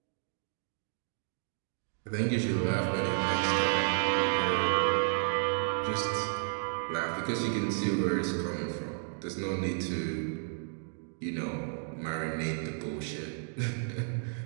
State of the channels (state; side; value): silent; left; digital silence